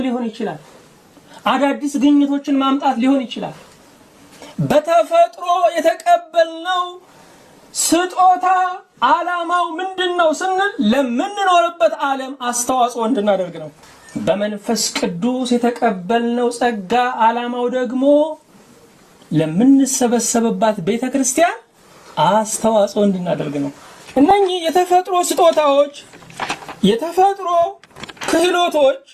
ሊሆን ይችላል፣ አዳዲስ ግኝቶችን ማምጣት ሊሆን ይችላል። በተፈጥሮ የተቀበልነው ስጦታ ዓላማው ምንድነው ስንል ለምንኖርበት ዓለም አስተዋጽኦ እንድናደርግ ነው። በመንፈስ ቅዱስ የተቀበልነው ጸጋ ዓላማው ደግሞ ለምንሰበሰብባት ቤተክርስቲያን አስተዋጽኦ እንድናደርግ ነው። እነኚህ የተፈጥሮ ስጦታዎች፣ የተፈጥሮ ክህሎቶች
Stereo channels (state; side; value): identical; both; correlation 1.00